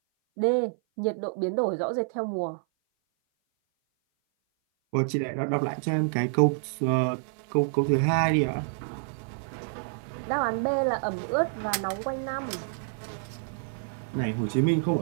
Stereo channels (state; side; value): silent; left; 56 dB below the other